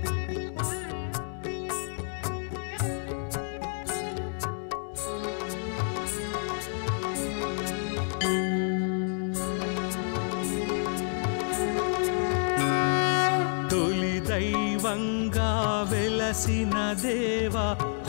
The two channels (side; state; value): right; silent; 59 dB below the other